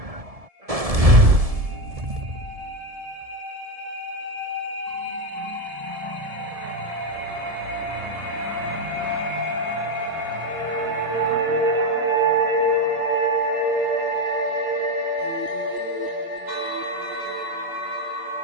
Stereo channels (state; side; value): late; left; 1.7 ms